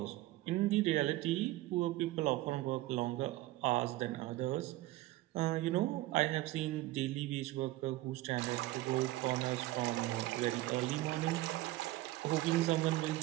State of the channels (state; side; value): quieter; left; 17.4 dB